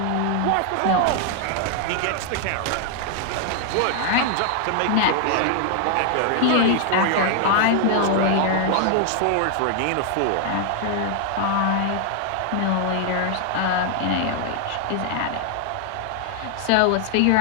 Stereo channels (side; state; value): both; different; correlation 0.00